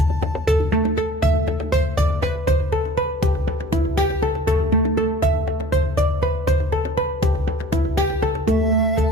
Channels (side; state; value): both; normal; correlation 0.46